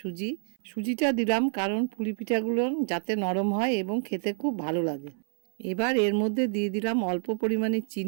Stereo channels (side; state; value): left; silent; 59 dB below the other